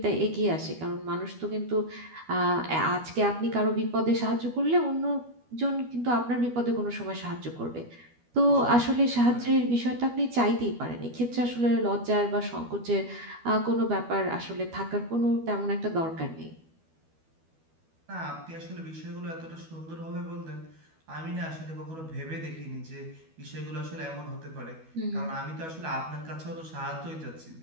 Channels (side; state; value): left; late; 12 ms